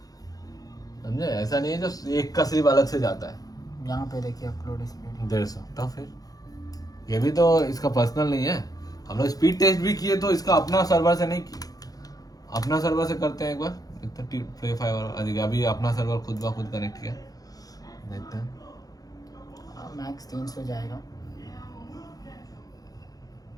समझे? ऐसा नहीं है जो एक का सिर्फ अलग से जाता है। यहाँ पे देखिए अपलोड स्पीड 150, तो फिर ये भी तो इसका पर्सनल नहीं है। हम लोग स्पीड टेस्ट भी किए तो इसका अपना सर्वर से नहीं किए, अपना सर्वर से करते हैं एक बार, इतना प्ले फाइवर अभी अपना सर्वर खुद ब खुद कनेक्ट किया, देखते हैं। मैक्स 300 जाएगा।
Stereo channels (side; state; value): right; late; 0.18 ms